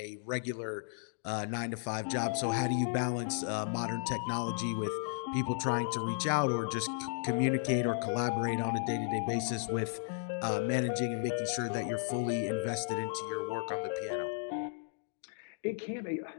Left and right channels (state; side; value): silent; right; digital silence